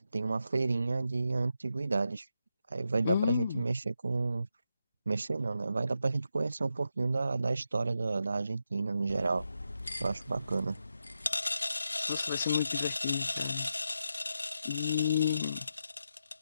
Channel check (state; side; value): inverted; both; correlation -0.86